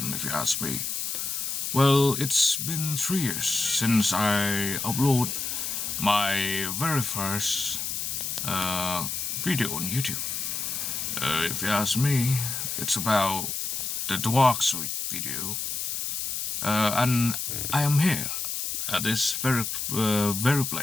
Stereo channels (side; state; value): left; noise; hiss, 3 dB below the sound